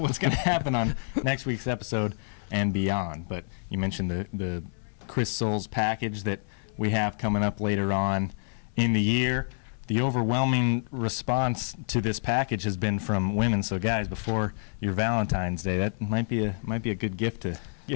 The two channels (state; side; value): silent; right; 59 dB below the other